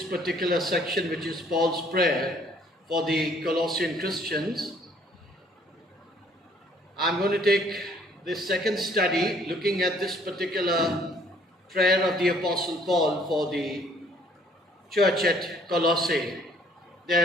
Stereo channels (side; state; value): both; normal; correlation 0.60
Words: particular section, which is Paul's prayer for the Colossian Christians. I'm going to take this second study looking at this particular prayer of the Apostle Paul for the church at Colossae,